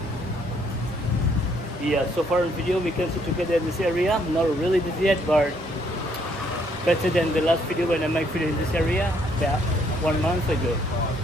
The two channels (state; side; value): normal; both; correlation 0.68